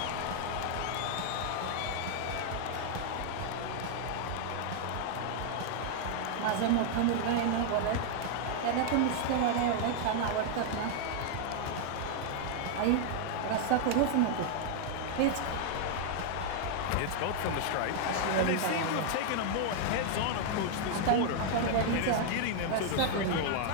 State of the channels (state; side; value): different; both; correlation 0.00